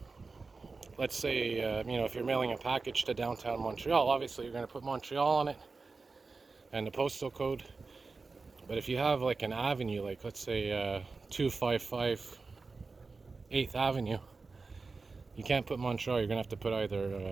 let's say if you're mailing a package to downtown Montreal, obviously you're going to put Montreal on it and the postal code. But if you have like an avenue, like let's say 255 8th Avenue, you can't put Montreal. You're going to have to put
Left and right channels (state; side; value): quieter; left; 4.1 dB